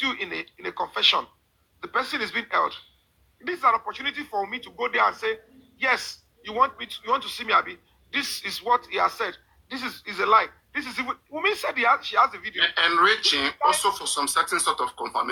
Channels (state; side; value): identical; both; correlation 1.00